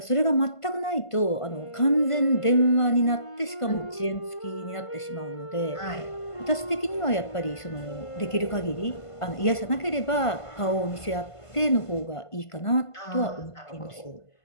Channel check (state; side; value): late; right; 1.5 ms